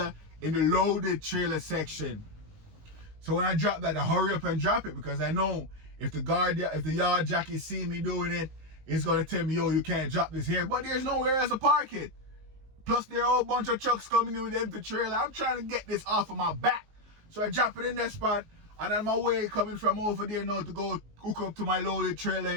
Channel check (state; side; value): late; left; 19 ms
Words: in the loaded trailer section. So when I drop that, I hurry up and drop it because I know if the yard jockey see me doing it, it's gonna tell me, yo, you can't drop this here. But there's nowhere else to park it. Plus there are a whole bunch of trucks coming in with the empty trailer. I'm trying to get this off of my back. So I drop it in that spot, and on my way coming from over there now to go hook up to my loaded trailer